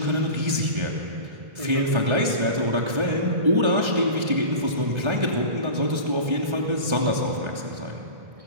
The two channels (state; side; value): late; left; 1.3 ms